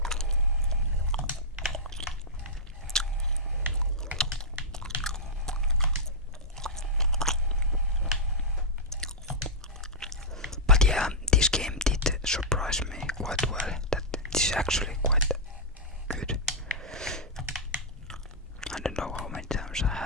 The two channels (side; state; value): both; normal; correlation -0.08